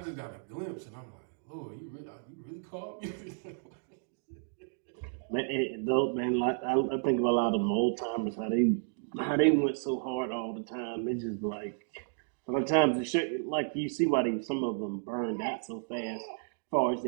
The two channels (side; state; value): left; silent; digital silence